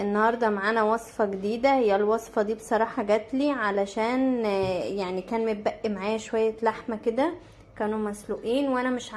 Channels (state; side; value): identical; both; correlation 1.00